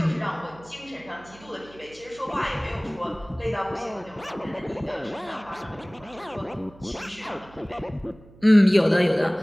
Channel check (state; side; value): noise; right; hum, 23 dB below the sound